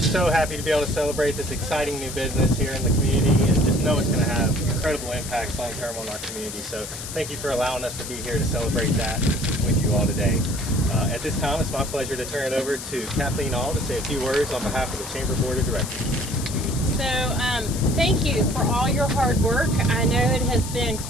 happy to be able to celebrate this exciting new business here in the community and just know it's going to have incredible impacts long term on our community. So thank you for allowing us to be here to celebrate that with you all today. At this time, it's my pleasure to turn it over to Kathleen All to say a few words on behalf of the Chamber Board of Directors. So thank you for all your hard work. I know it has been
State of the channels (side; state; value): left; noise; hiss, 9 dB below the sound